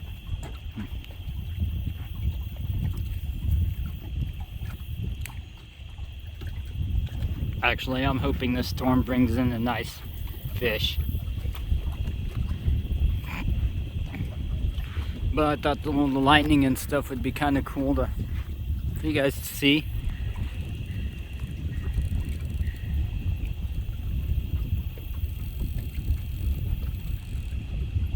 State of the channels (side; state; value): both; identical; correlation 1.00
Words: Actually, I'm hoping this storm brings in a nice fish. But I thought the lightning and stuff would be kind of cool for you guys to see.